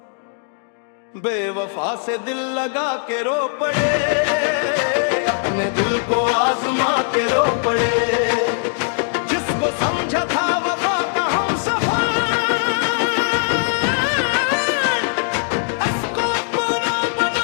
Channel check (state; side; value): silent; right; digital silence